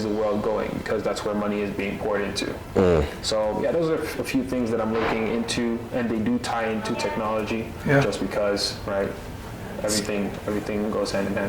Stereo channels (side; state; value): both; identical; correlation 1.00